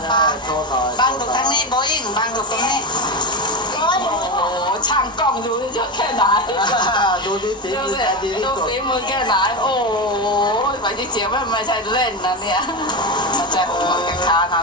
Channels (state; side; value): normal; both; correlation 0.16